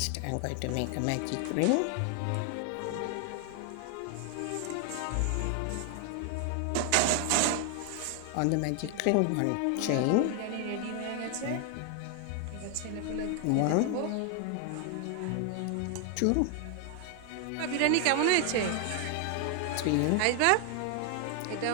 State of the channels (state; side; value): different; both; correlation 0.00